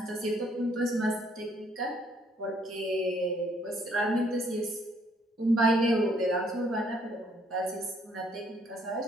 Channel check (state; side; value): normal; both; correlation 0.66